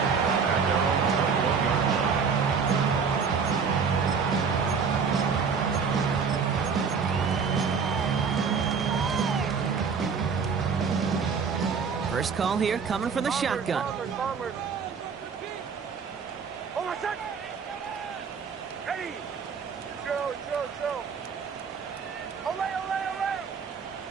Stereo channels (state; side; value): quieter; left; 5.9 dB